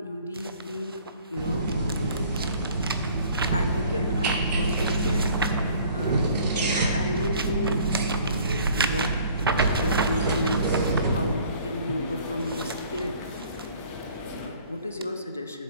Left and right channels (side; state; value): both; inverted; correlation -0.53